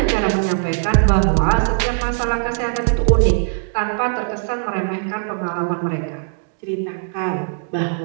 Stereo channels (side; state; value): left; silent; digital silence